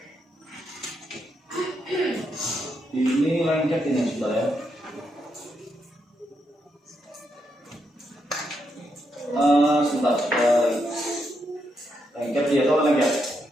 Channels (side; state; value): both; normal; correlation 0.81